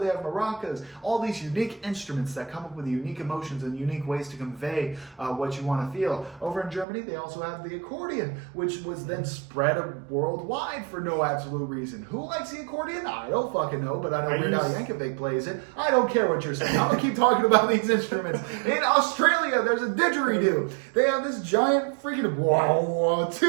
have maracas. All these unique instruments that come up with unique emotions and unique ways to convey what you want to feel. Over in Germany, they also have the accordion, which was then spread worldwide for no absolute reason. Who likes the accordion? I don't fucking know, but I know Weird Al Yankovic plays it. I don't care what you're saying. I'm going to keep talking about these instruments. In Australia, there's a didgeridoo. They have this giant freaking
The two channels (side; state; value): left; drops out; at 6.9 s